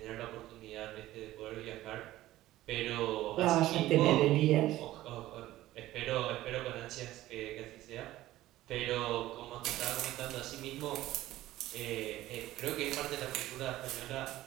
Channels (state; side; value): quieter; left; 15.5 dB